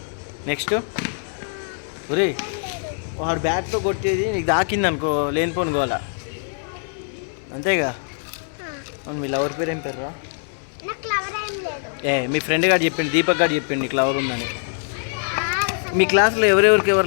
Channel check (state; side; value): silent; right; 62 dB below the other